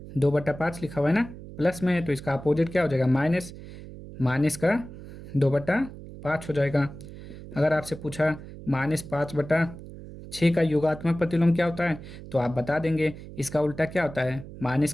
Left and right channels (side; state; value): right; noise; hum, 14 dB below the sound